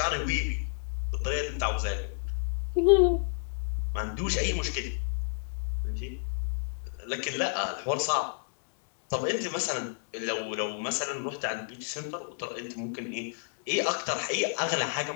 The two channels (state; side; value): silent; right; digital silence